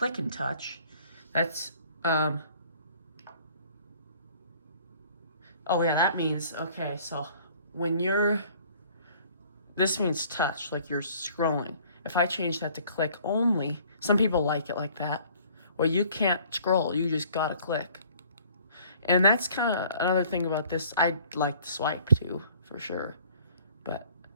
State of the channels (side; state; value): both; inverted; correlation -0.55